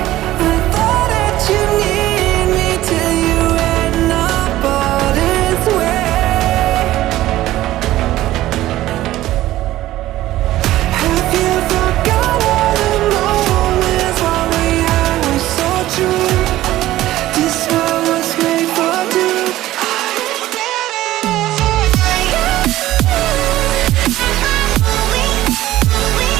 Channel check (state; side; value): quieter; left; 15.2 dB